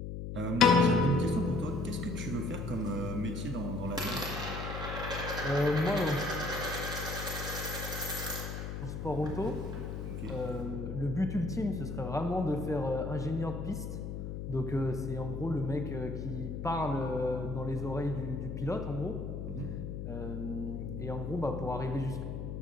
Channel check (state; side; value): noise; left; hum, 5 dB below the sound